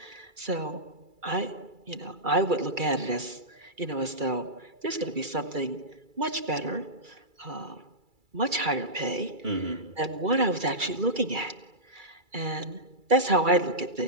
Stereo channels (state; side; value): late; left; 2.3 ms